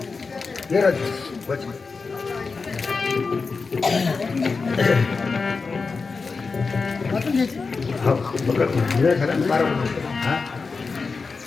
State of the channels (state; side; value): quieter; right; 4.5 dB